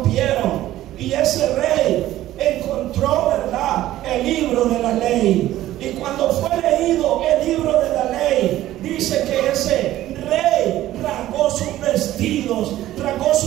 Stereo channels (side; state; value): left; quieter; 14.3 dB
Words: Y ese rey encontró, ¿verdad?, el libro de la ley. Y cuando fue leído el libro de la ley, dice que ese rey rasgó sus vestidos, rasgó